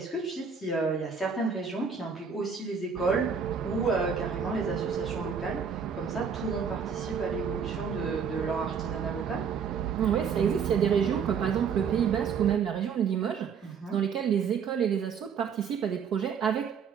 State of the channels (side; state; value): left; quieter; 6.5 dB